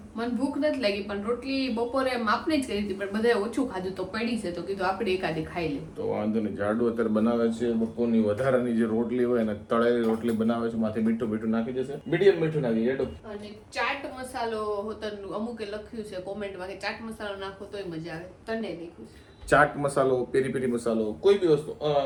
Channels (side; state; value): both; identical; correlation 1.00